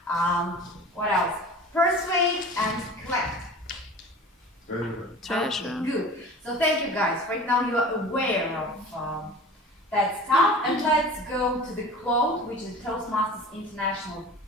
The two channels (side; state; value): both; normal; correlation 0.39